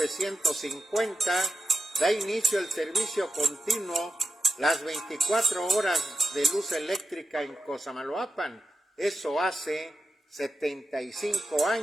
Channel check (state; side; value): normal; both; correlation 0.90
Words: da inicio el servicio continuo las 24 horas de luz eléctrica en Cosamaloapan. Eso hace 75